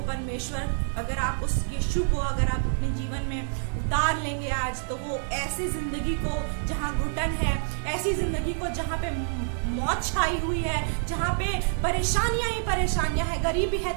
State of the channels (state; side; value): silent; left; digital silence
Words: परमेश्वर, अगर आप उस यीशु को अगर आप अपने जीवन में उतार लेंगे आज, तो वो ऐसी जिंदगी को जहाँ घुटन है, ऐसी जिंदगी को जहाँ पे मौत छाई हुई है, जहाँ पे परेशानियां ही परेशानियां है, गरीबी है,